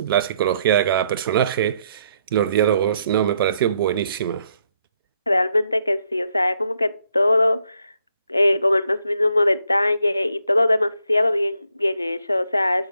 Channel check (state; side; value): inverted; both; correlation -0.74